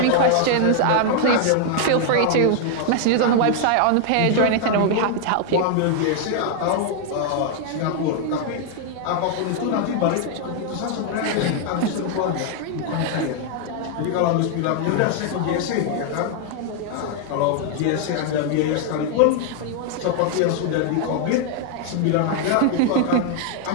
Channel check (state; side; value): different; both; correlation 0.00